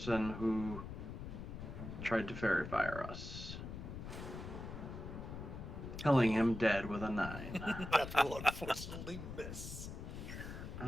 who tried to fairy fire us. Killing him dead with a 9. That will unfortunately miss.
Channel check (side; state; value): left; noise; rumble, 8 dB below the sound